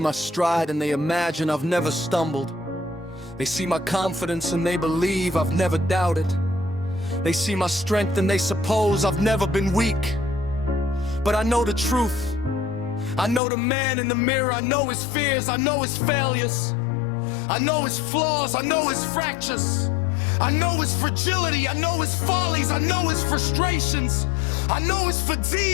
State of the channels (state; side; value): drops out; right; at 13.4 s